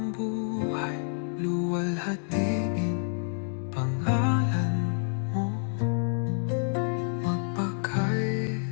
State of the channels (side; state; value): right; silent; 59 dB below the other